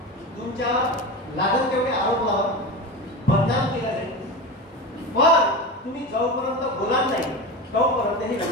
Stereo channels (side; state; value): both; normal; correlation 0.25